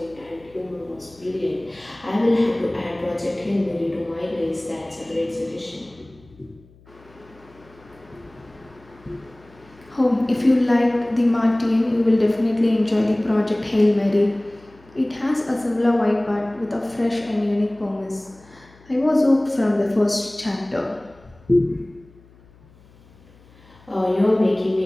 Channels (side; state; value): left; noise; hum, 27 dB below the sound